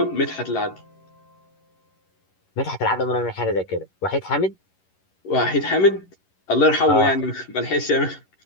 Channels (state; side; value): late; right; 11 ms